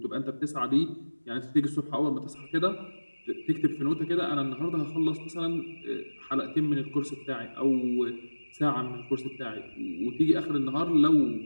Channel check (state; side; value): inverted; both; correlation -1.00